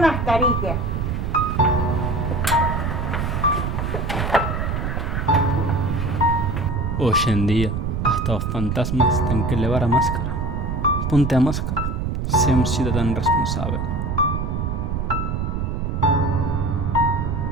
Hoy en día, hasta los fantasmas tienen que llevar a máscara. Ponte a máscara. Sé un ciudadano responsable.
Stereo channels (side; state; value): right; noise; rumble, 1 dB below the sound